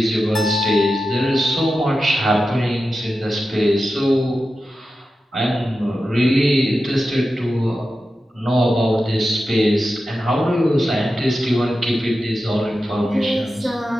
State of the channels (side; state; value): both; normal; correlation 0.91